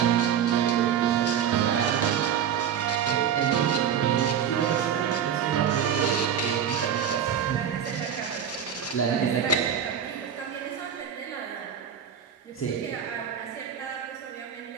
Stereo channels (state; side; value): quieter; left; 8.4 dB